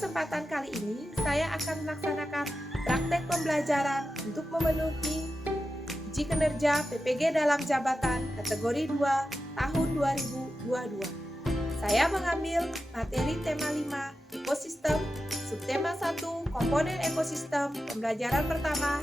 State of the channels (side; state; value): both; normal; correlation 0.91